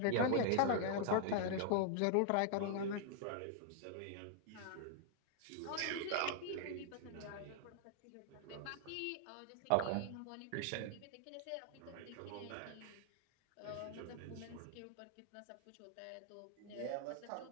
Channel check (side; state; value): both; different; correlation 0.00